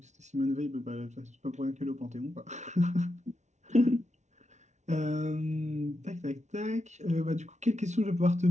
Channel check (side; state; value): left; late; 0.33 ms